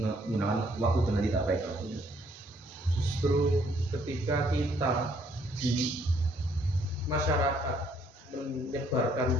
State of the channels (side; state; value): both; normal; correlation 0.66